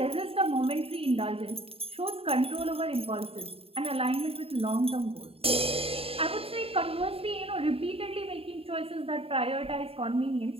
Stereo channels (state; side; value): late; left; 0.28 ms